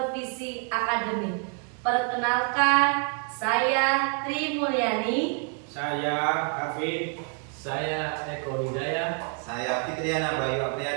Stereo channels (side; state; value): left; quieter; 39.0 dB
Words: akademik. Perkenalkan, saya Tri Mulyani. Saya Hafid. Saya Eko Hidayah. Saya Fitriana Bayu